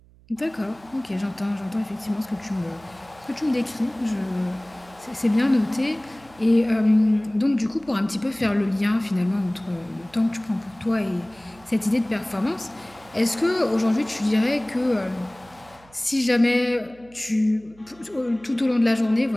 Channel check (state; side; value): noise; right; hum, 27 dB below the sound